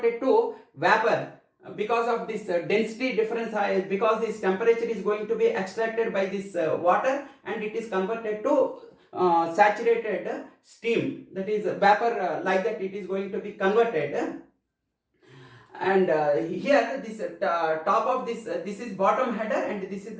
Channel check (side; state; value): both; identical; correlation 1.00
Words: it to vapor, because of this density difference, because this temperature is going to be extracted by this water, and it is converted to saturated steam, that is vapor, like that it is going to be converted. And here this top of this, this is bottom header, and this is